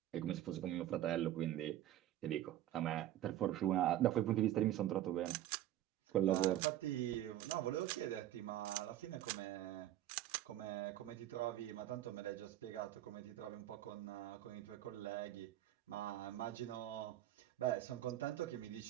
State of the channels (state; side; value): quieter; left; 12.9 dB